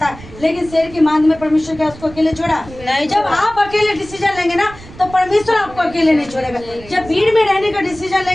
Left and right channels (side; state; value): right; noise; rumble, 18 dB below the sound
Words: है, लेकिन शेर की मांद में परमेश्वर क्या उसको अकेले छोड़ा? जब आप अकेले डिसीजन लेंगे ना तो परमेश्वर आपको अकेले नहीं छोड़ेगा। जब भीड़ में रहने का डिसीजन